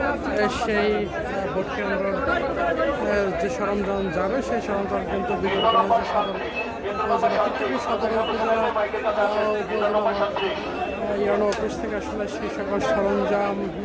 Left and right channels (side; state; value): both; identical; correlation 1.00